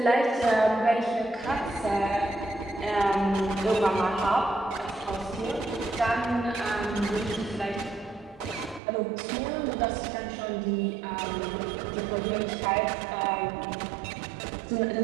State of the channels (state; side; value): drops out; left; at 8.8 s